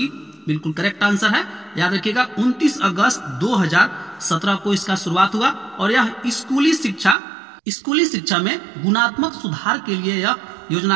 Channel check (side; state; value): left; drops out; at 7.2 s